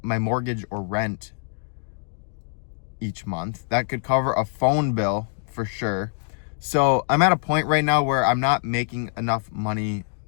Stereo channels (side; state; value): right; silent; 62 dB below the other